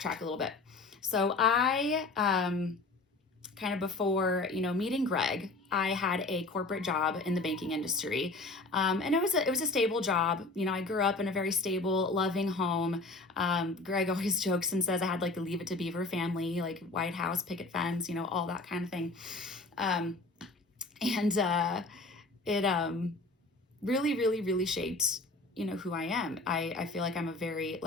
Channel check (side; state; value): right; quieter; 3.3 dB